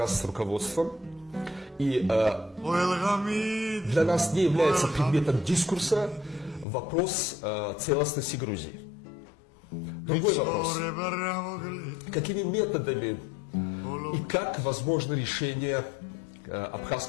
руководством, и для нас не является предметом дискурса вопрос целостности Грузии. Другой вопрос. Какими методами и как возможно решение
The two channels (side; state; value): right; drops out; at 6.7 s